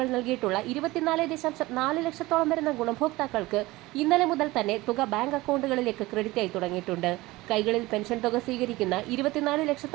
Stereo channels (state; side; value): quieter; left; 19.9 dB